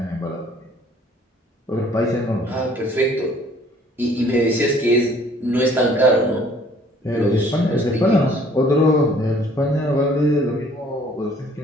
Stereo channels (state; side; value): normal; both; correlation 0.57